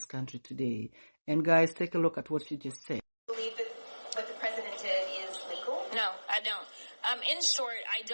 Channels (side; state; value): both; inverted; correlation -1.00